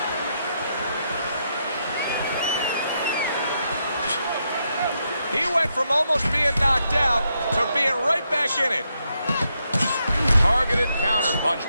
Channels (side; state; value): both; inverted; correlation -0.80